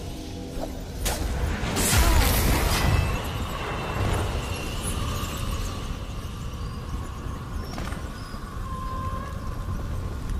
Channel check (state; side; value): identical; both; correlation 1.00